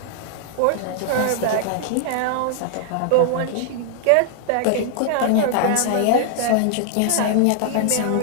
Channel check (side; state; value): both; different; correlation -0.01